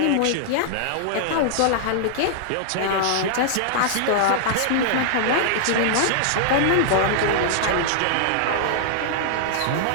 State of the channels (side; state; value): both; different; correlation -0.01